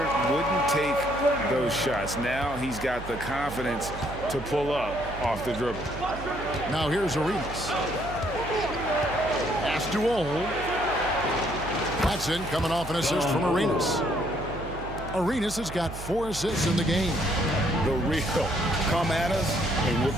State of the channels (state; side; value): noise; right; hum, 11 dB below the sound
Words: wouldn't take those shots. Now he's got the confidence to pull up off the dribble. Now here's Arenas. Pass to Ole. Watson coming off an assist from Arenas. Arenas has got 4 assists in the game. The real come at us, and we're